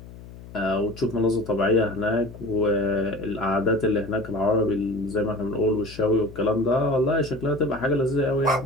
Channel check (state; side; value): noise; left; hum, 16 dB below the sound